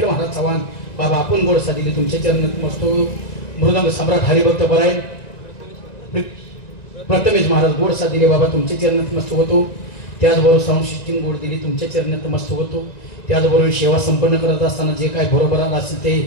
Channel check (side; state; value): right; late; 1.9 ms